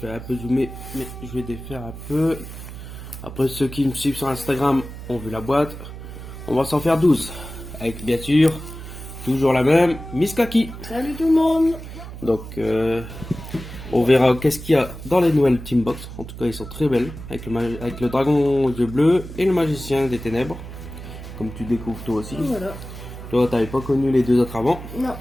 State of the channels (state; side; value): noise; right; hum, 12 dB below the sound